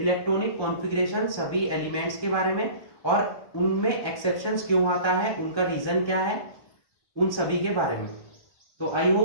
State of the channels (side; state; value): right; late; 1.1 ms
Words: कॉन्फ़िगरेशन सभी एलिमेंट्स के बारे में, और उनमें एक्सेप्शंस क्यों आता है, उनका रीजन क्या है, उन सभी के बारे में। तो आई